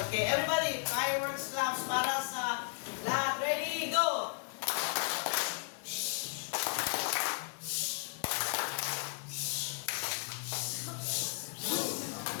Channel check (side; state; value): right; silent; digital silence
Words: Okay, everybody, fireworks claps para sa lahat. Ready? Go!